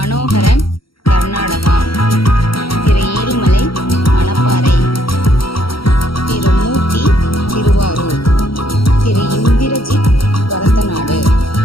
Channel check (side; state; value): right; late; 0.74 ms